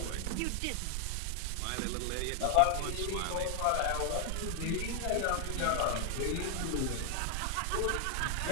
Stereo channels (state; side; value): different; both; correlation 0.00